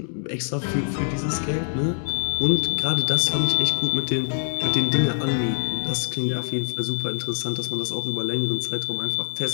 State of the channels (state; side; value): silent; right; digital silence